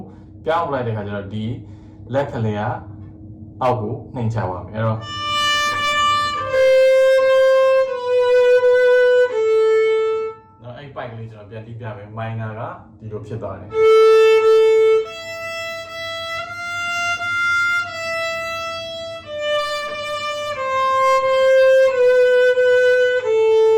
ပြောင်းလိုက်တဲ့ခါကျတော့ဒီလက်ကလေးကအောက်ကိုနှိမ့်ချပါမယ်အဲ့တော့နော်အဲ့ပိုက်ကလေးကျွန်တော်ပြန်တီးပြမယ် minor ကဒီလိုဖြစ်သွားတယ်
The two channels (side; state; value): both; identical; correlation 1.00